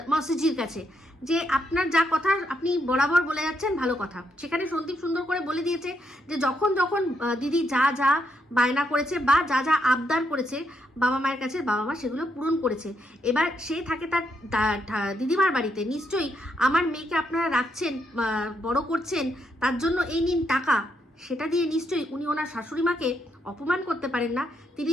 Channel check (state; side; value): normal; both; correlation 0.78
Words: মসিজির কাছে, যে আপনার যা কথা আপনি বরাবর বলে যাচ্ছেন ভালো কথা, সেখানে সন্দীপ সুন্দর করে বলে দিয়েছে যে যখন দিদি যা যা বায়না করেছে বা যা যা আবদার করেছে বাবা মায়ের কাছে, বাবা মা সেগুলো পূরণ করেছে। এবার সে থাকে তার দিদিমার বাড়িতে, নিশ্চয়ই আমার মেয়েকে আপনারা রাখছেন, বড় করছেন, তার জন্য এই নিন টাকা, সেটা দিয়ে নিশ্চয়ই উনি ওনার শাশুড়ি মাকে অপমান করতে পারেন না। তিনি